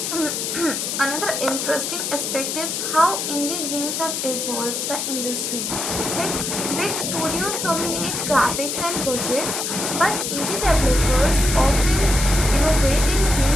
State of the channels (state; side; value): noise; left; hiss, 2 dB below the sound